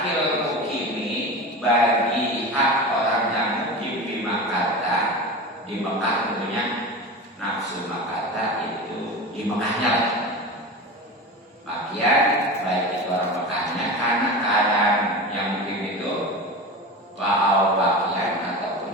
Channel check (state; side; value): normal; both; correlation 0.28